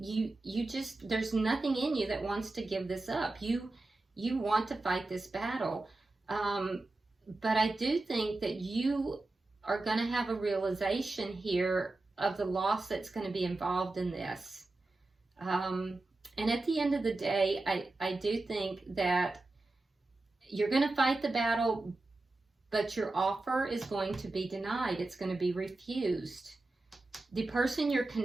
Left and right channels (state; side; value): quieter; left; 3.1 dB